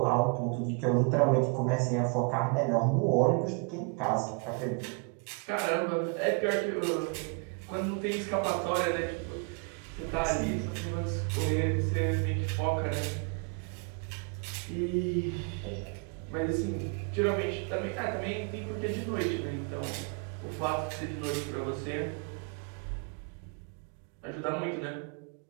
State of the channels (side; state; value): left; quieter; 35.8 dB